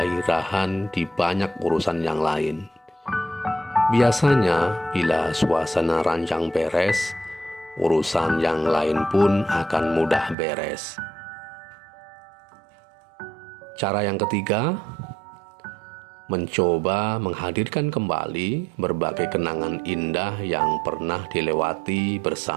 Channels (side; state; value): left; drops out; at 10.4 s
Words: di banyak urusan yang lain. Biasanya, bila suasana ranjang beres, urusan yang lain pun akan mudah beres. Cara yang ketiga, mencoba menghadirkan kembali berbagai kenangan indah yang pernah dilewati